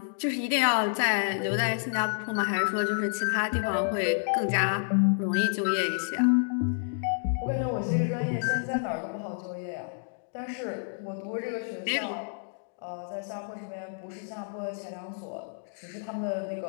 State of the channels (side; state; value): right; silent; digital silence